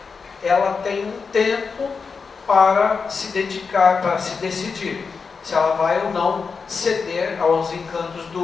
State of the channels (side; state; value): right; quieter; 5.2 dB